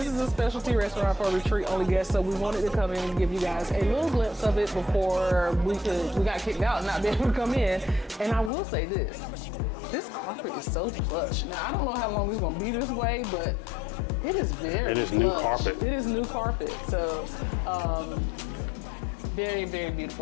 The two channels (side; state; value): right; drops out; at 8.5 s